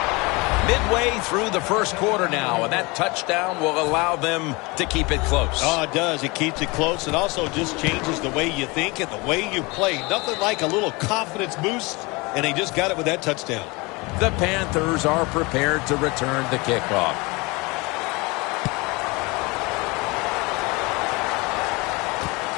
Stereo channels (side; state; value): right; quieter; 25.7 dB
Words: Midway through the 1st quarter now, and that touchdown will allow them to keep it close. Oh, it does. It keeps it close. It also just changes the way you think and the way you play. Nothing like a little confidence boost, and they just got it with that touchdown. The Panthers are prepared to return the kickoff.